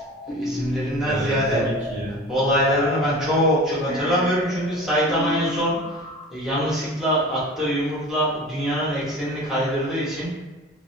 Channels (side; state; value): both; normal; correlation 0.37